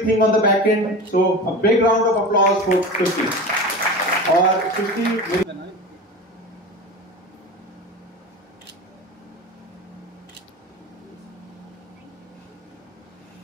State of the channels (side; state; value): both; normal; correlation 0.30